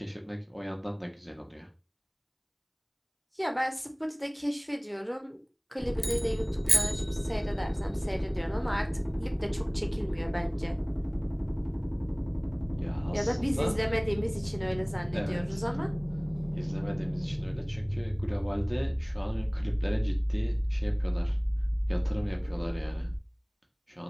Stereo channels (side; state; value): both; identical; correlation 1.00